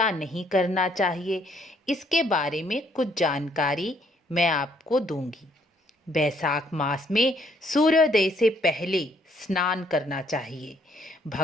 नहीं करना चाहिए, इसके बारे में कुछ जानकारी मैं आपको दूंगी। बैसाख मास में सूर्योदय से पहले स्नान करना चाहिए।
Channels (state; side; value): normal; both; correlation 0.67